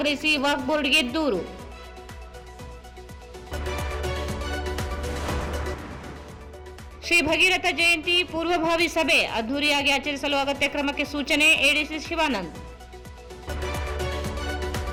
ವಕ್ಫ್ ಬೋರ್ಡ್ಗೆ ದೂರು. ಶ್ರೀ ಭಗೀರಥ ಜಯಂತಿ ಪೂರ್ವಭಾವಿ ಸಭೆ. ಅದ್ದೂರಿಯಾಗಿ ಆಚರಿಸಲು ಅಗತ್ಯ ಕ್ರಮಕ್ಕೆ ಸೂಚನೆ. ಎಡಿಸಿ ಶಿವಾನಂದ್.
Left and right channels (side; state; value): both; identical; correlation 1.00